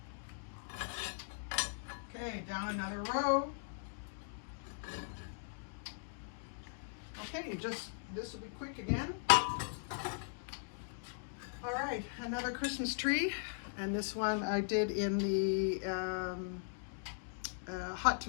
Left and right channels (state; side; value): silent; right; digital silence